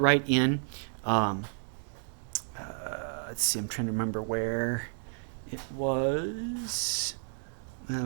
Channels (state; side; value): silent; left; digital silence